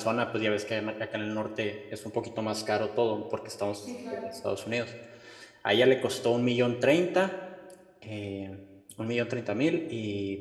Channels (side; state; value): both; identical; correlation 1.00